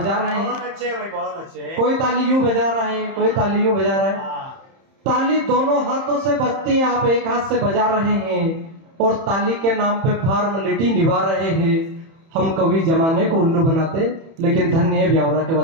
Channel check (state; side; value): late; left; 31 ms